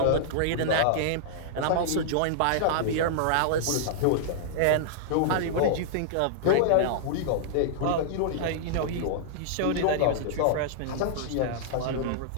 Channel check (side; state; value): both; different; correlation -0.02